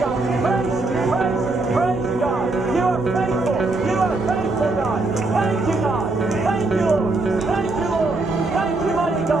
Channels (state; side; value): quieter; left; 3.2 dB